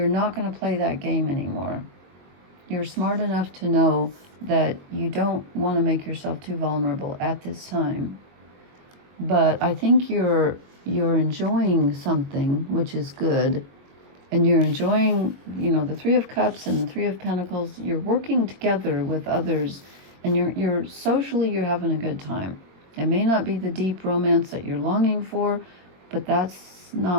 not going to play that game anymore. You're smart enough to know that you don't want to make yourself too vulnerable at this time. But I think you're enjoying something, which is good. and you're enjoying, you know, the Three of Cups and the Three of Pentacles. You're working together with others, and you're socially, you're having a good time. It may not be the deep romance that you're longing for, but that's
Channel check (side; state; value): left; late; 22 ms